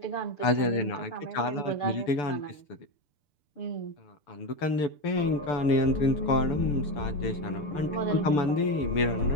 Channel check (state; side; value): late; right; 6.8 ms